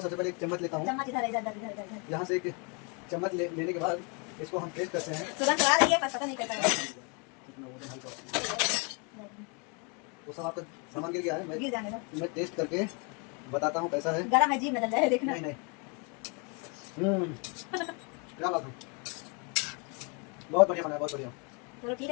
सबसे पहले एक चम्मच लेता हूँ। चम्मच इधर इधर इधर इधर इधर। यहाँ से एक चम्मच लेने के बाद इसको हम टेस्ट करते हैं। तुरंत आ रही है, पर पता नहीं कैसा है। वो सब आपका सामान गिर गया है, गिर जाने दो, मैं टेस्ट करके बताता हूँ कैसा है। गरम है, जीभ में डल जाए, देखना। नहीं नहीं, क्या बात है, बहुत बढ़िया बना है, बहुत बढ़िया। चलो ठीक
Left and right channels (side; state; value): right; quieter; 34.3 dB